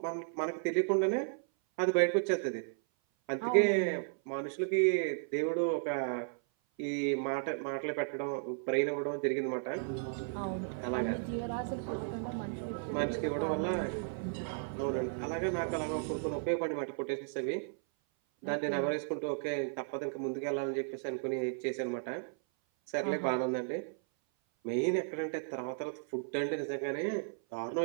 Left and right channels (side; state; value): left; silent; 55 dB below the other